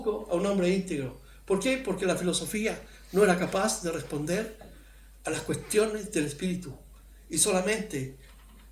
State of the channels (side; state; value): both; identical; correlation 1.00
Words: a un hombre íntegro. ¿Por qué? Porque la filosofía no era capaz de responder a las cuestiones del Espíritu, y solamente